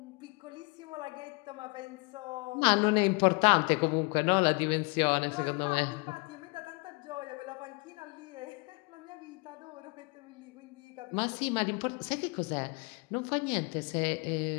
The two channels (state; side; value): quieter; right; 30.3 dB